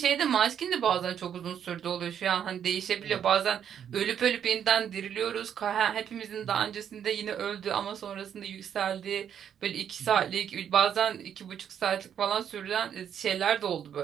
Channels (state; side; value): quieter; left; 8.9 dB